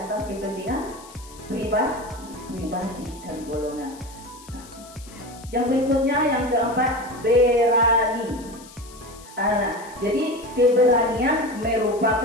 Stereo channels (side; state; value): left; noise; hiss, 20 dB below the sound